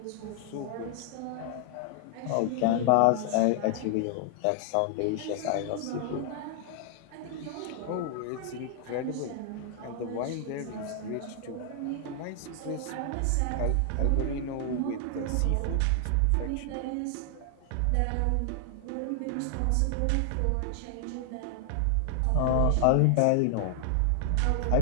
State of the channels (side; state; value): both; different; correlation 0.00